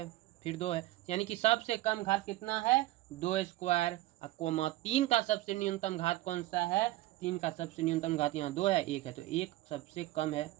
फिर 2 है, यानी कि सबसे कम घात कितना है, 2 स्क्वायर, कोमा 3 का सबसे न्यूनतम घात कौन सा है, 3 का सबसे न्यूनतम घात यहाँ 2 है, 1 है, तो 1 सबसे कम है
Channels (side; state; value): left; quieter; 17.1 dB